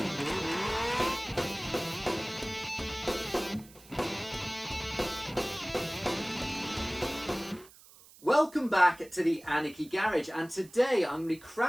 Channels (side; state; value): right; noise; hiss, 23 dB below the sound